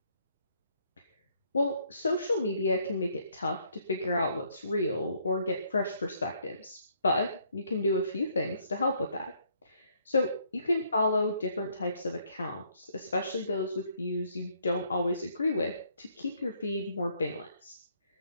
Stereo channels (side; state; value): both; inverted; correlation -0.68